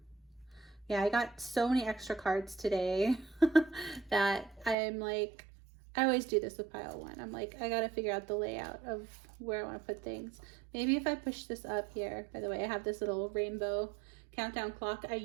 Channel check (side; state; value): left; drops out; at 4.8 s